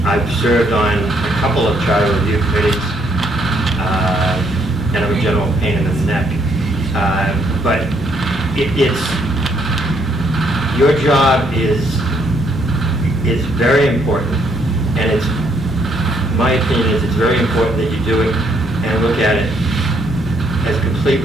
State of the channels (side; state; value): both; normal; correlation 0.71